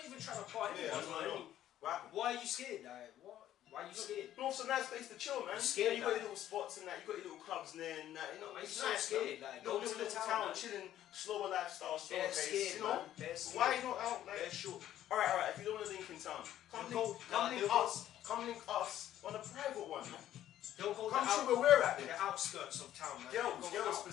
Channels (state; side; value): quieter; right; 12.2 dB